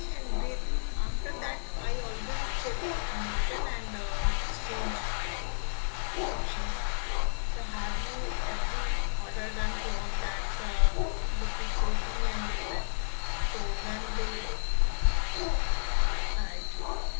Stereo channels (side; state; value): right; silent; 57 dB below the other